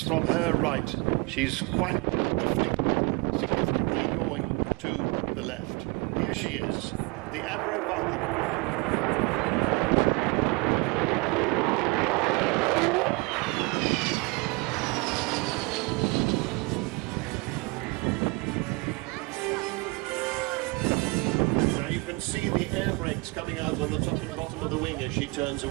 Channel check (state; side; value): quieter; left; 27.1 dB